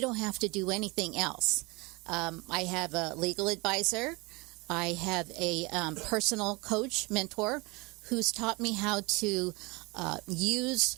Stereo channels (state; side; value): quieter; left; 25.8 dB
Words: don't have to do anything else. I have a legal advisor. I have a personal coach, mentor, who's taught me how to